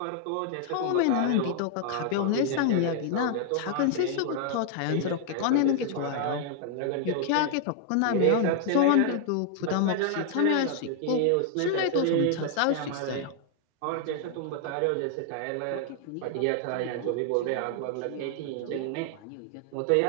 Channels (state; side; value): different; both; correlation 0.00